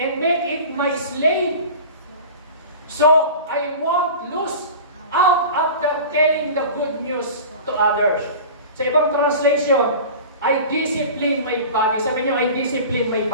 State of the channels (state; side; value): inverted; both; correlation -0.36